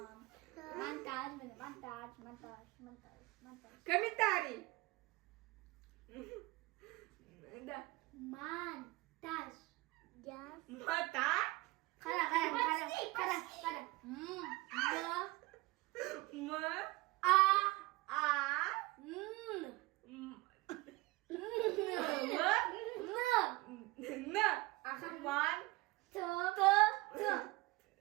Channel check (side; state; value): left; quieter; 21.6 dB